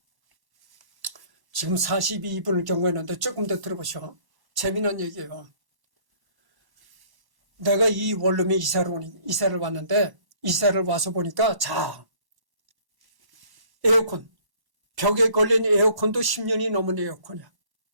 지금 42분을 경고했는데 조금 더 들어보시오. 재미난 얘기예요. 내가 이 원룸에 이사를 왔는데, 이사를 와서 보니까, 자, 에어컨, 벽에 걸린 에어컨도 10년이 넘은 에어컨이야.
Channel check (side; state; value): left; late; 1.1 ms